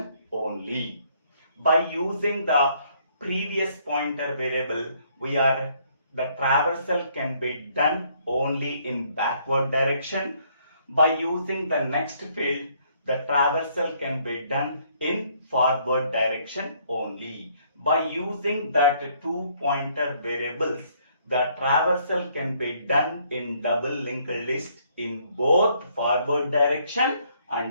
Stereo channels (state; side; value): inverted; both; correlation -0.66